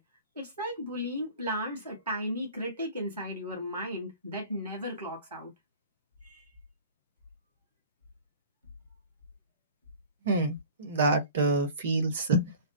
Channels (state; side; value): inverted; both; correlation -0.42